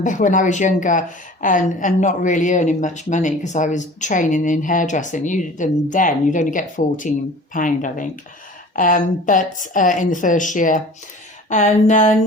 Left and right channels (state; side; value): normal; both; correlation 0.43